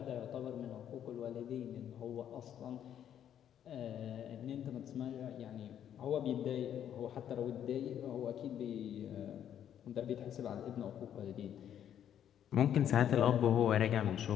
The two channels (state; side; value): quieter; right; 9.9 dB